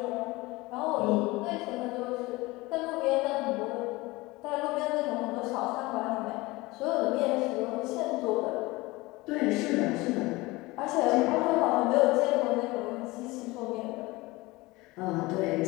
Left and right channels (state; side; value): quieter; right; 21.7 dB